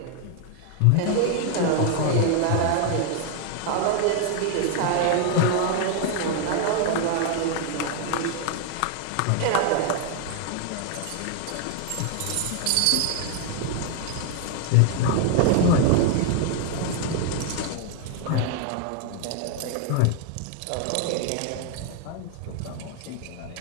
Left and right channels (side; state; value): both; different; correlation 0.00